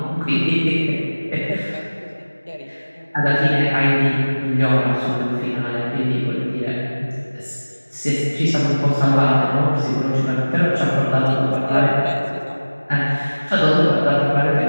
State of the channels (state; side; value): inverted; both; correlation -1.00